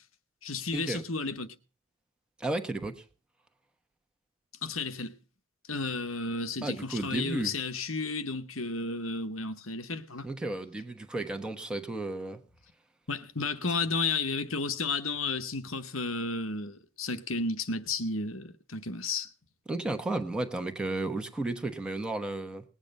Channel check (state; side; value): normal; both; correlation 0.41